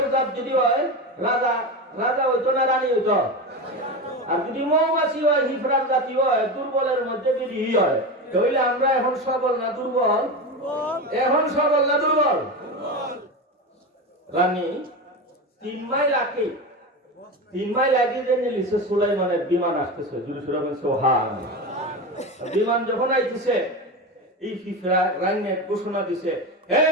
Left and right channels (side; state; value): both; normal; correlation 0.21